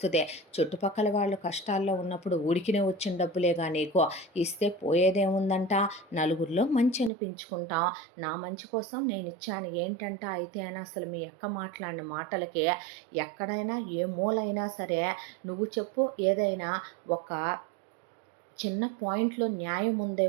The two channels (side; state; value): left; drops out; at 7.1 s